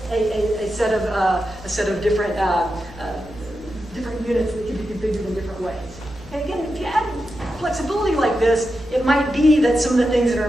a set of different units that can be configured in different ways. And again, if you add flexibility like this, it might be that some of the things that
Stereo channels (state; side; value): normal; both; correlation 0.89